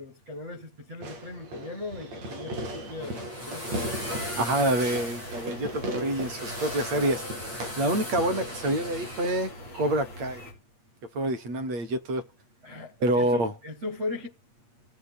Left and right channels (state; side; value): late; left; 8.5 ms